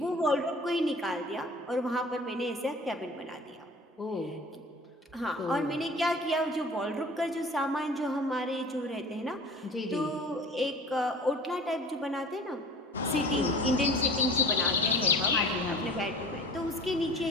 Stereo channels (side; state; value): both; normal; correlation 0.42